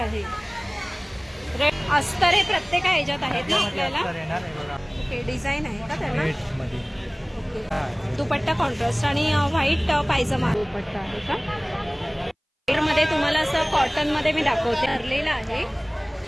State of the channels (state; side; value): identical; both; correlation 1.00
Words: अस्तर हे प्रत्येक ह्याच्यात आहेत ना आपल्याला. ओके डिझाईन आहे का त्याला. ओके दुपट्टा कॉन्ट्रास्ट आणि व्हाईट पायजमा दुपट्टा आहे का. मध्ये तुम्हाला असं कॉटन मध्ये मी दाखवते भरलेला आहे